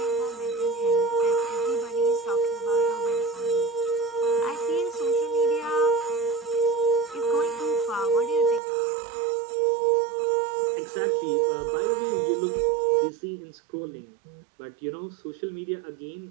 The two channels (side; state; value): left; drops out; at 8.6 s